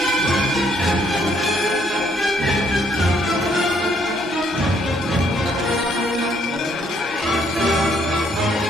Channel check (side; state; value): both; normal; correlation 0.68